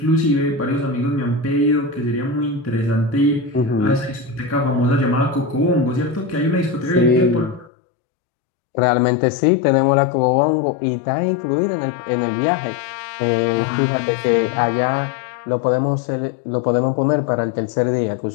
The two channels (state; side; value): drops out; right; at 7.7 s